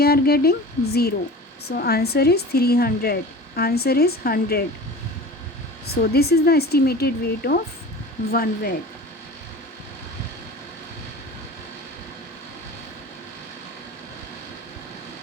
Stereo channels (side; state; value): both; normal; correlation 0.37